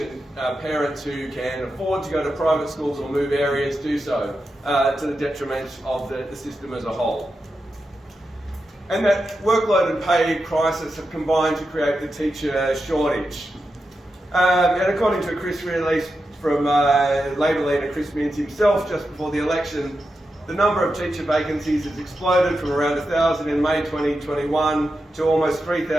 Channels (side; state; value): both; normal; correlation 0.89